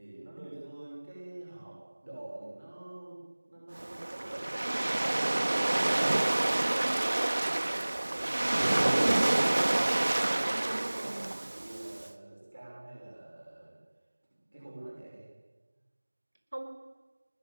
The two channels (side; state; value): both; inverted; correlation -1.00